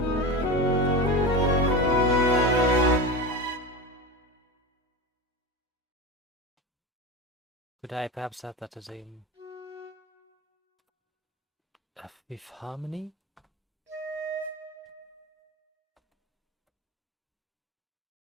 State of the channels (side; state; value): both; normal; correlation 0.23